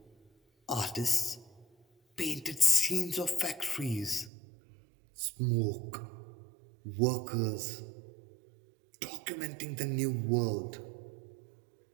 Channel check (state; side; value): drops out; left; at 4.3 s